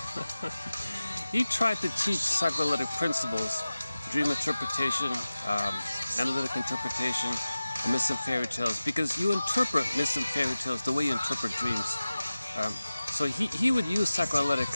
He tried to teach psychoanalytic principles, dream interpretation, analytic interpretation, and myths and fairy tales, because you interpret myths and fairy tales the way you interpret dreams. So he would use psychoanalytic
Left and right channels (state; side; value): inverted; both; correlation -0.96